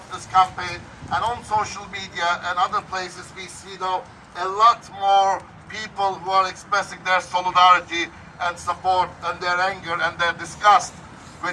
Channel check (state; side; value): identical; both; correlation 1.00